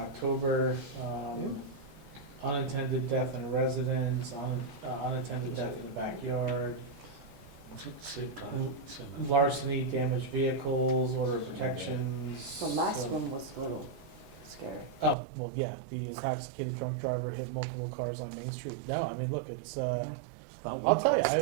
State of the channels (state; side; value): drops out; left; at 15.2 s